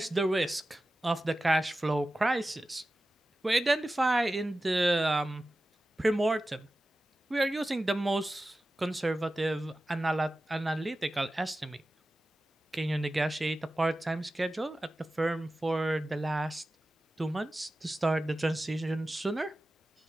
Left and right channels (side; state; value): both; normal; correlation 0.95